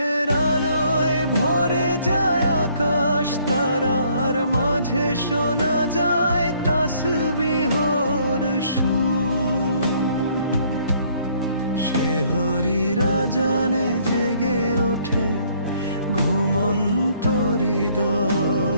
আলোয় ভরে যায় আকাশ, তারার মাঝে শোনা যায় তাসবিহর সুর। সেহরির আজানে জেগে ওঠে ঘুমন্ত হৃদয়,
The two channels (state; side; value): inverted; both; correlation -0.64